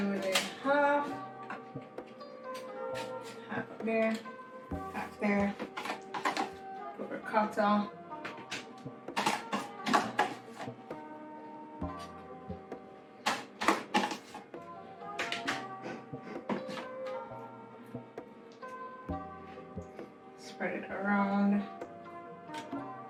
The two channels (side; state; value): both; identical; correlation 1.00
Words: with it half there, half there. Put ricotta. Spread it around.